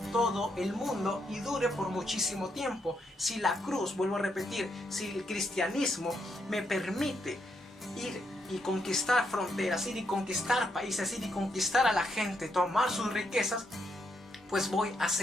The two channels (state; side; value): normal; both; correlation 0.78